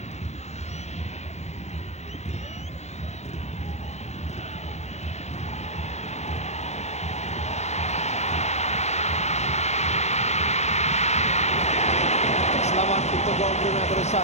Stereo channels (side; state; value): right; late; 0.32 ms